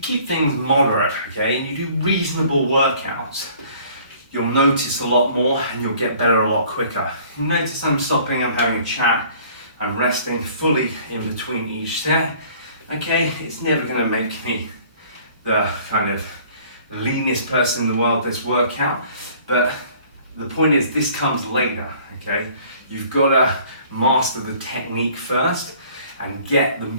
keep things moderate, okay, and you do reasonable workouts, you'll notice a lot more and you'll get better a lot quicker. You notice I'm stopping, I'm having a chat, I'm resting fully in between each set. Okay, it's never going to make me the kind of leanest person in the world this workout, but the point is this comes later. Okay, you've got to master the technique first and get the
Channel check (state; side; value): inverted; both; correlation -0.54